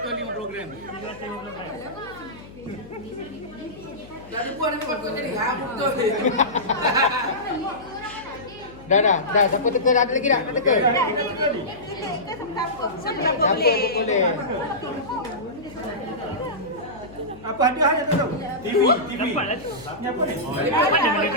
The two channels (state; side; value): noise; left; hum, 19 dB below the sound